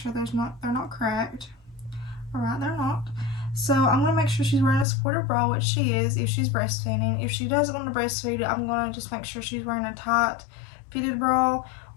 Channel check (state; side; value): drops out; right; at 4.9 s